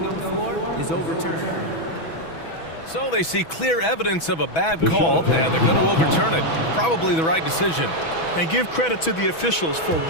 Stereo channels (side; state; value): right; late; 6.1 ms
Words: on the floor is overturned. So they see clear evidence of a bad call, and they're going to overturn it. Probably the right decision. And give credit to the officials for